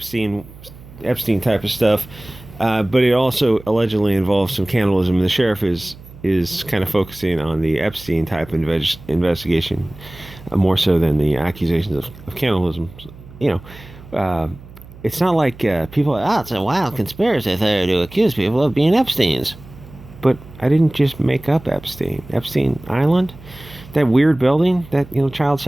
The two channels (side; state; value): right; noise; hum, 19 dB below the sound